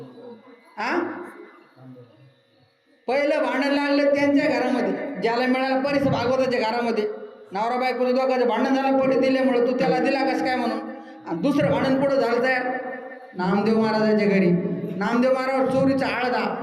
हा पहिलं भांडण लागलं त्यांच्या घरामध्ये, ज्याला मिळाला परीस भागवताच्या घरामध्ये. नवरा बायकोचं दोघांचं भांडण झालं परीस दिल्यामुळे, तू त्याला दिला कसं काय म्हणून. आणि दुसरं भांडण पुढं झालं तयार, नामदेव महाराजाच्या घरी. नामदेव महाराज चोरीचा आळदा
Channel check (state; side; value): identical; both; correlation 1.00